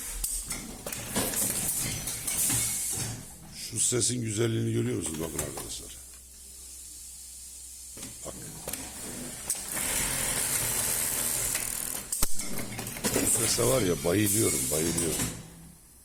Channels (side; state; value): both; identical; correlation 1.00